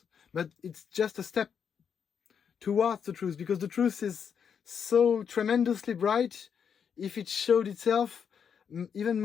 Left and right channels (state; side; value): quieter; right; 7.3 dB